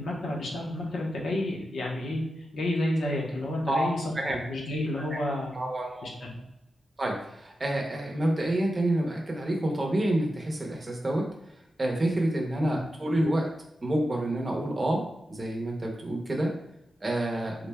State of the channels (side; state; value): both; normal; correlation 0.90